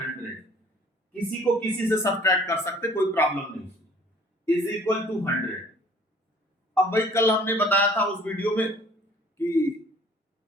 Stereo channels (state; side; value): normal; both; correlation 0.54